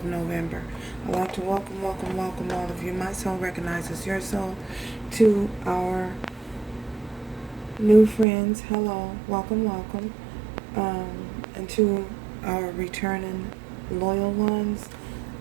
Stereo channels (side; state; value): left; drops out; at 8.2 s